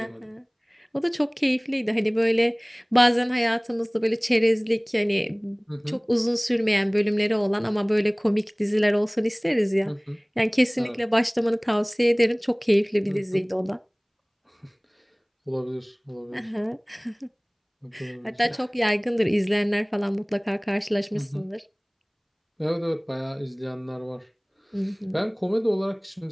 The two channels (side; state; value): both; identical; correlation 1.00